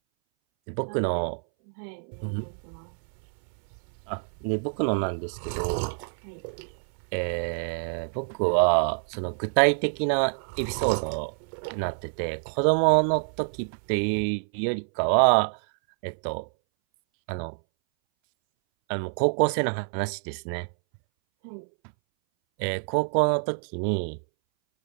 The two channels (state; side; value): silent; left; 60 dB below the other